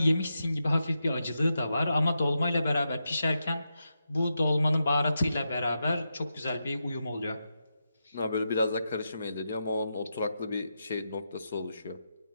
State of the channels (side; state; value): both; inverted; correlation -0.87